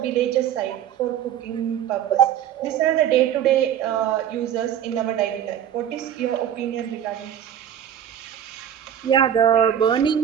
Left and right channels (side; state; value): left; quieter; 10.0 dB